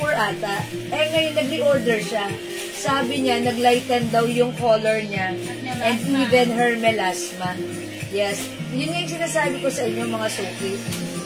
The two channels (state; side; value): identical; both; correlation 1.00